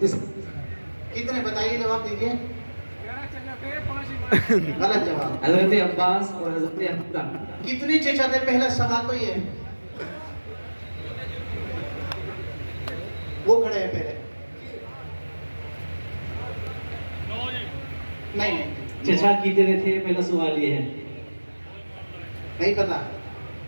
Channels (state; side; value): inverted; both; correlation -1.00